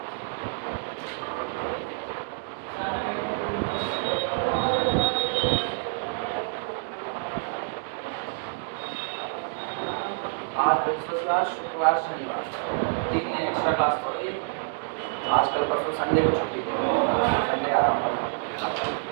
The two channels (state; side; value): silent; left; digital silence